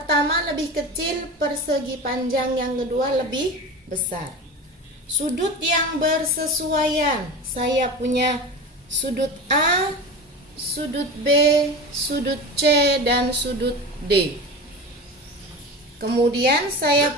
lebih kecil, persegi panjang yang kedua lebih besar. Sudut yang bersesuaian, saya punya sudut A, sudut B, sudut C, dan sudut D. Kemudian saya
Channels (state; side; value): normal; both; correlation 0.29